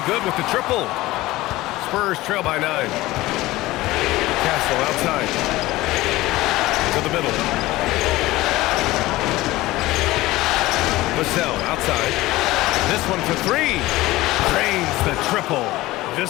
good with the triple. Spurs trail by 9. Castle outside. To the middle. Vassell outside. This one for 3. Drains the triple.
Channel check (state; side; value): quieter; right; 18.3 dB